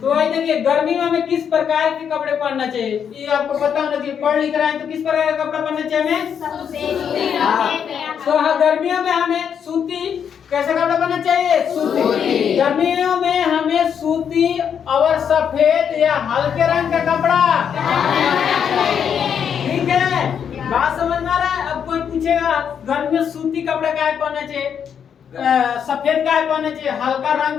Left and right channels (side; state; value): right; quieter; 7.8 dB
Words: वही देखिए गर्मी में हमें किस प्रकार के कपड़े पहनना चाहिए ये आपको पता होना चाहिए। पढ़ लिख रहा है तो किस प्रकार का कपड़ा पहनना चाहिए हमें? तो हाँ, गर्मियों में हमें सूती कैसा कपड़ा पहनना चाहिए? सूती। गर्मियों में हमें सूती और सफेद या हल्के रंग का कपड़ा, ठीक है? बात समझ में आ रहा है? अब कोई पूछेगा गर्मी में सूती कपड़ा का है पहनना चाहिए, सफेद का है पहनना चाहिए, हल्का